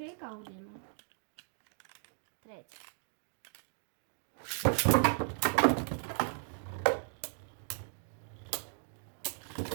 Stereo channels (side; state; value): left; silent; 54 dB below the other